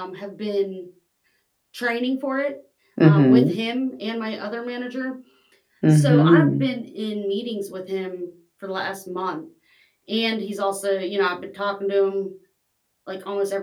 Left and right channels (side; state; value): both; identical; correlation 1.00